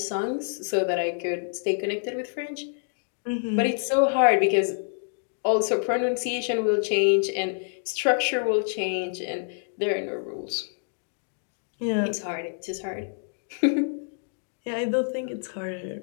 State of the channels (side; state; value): right; silent; digital silence